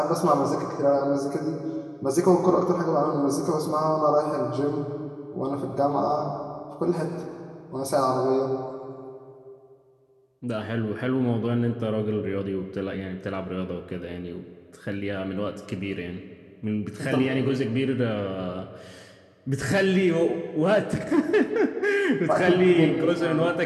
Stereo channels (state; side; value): identical; both; correlation 1.00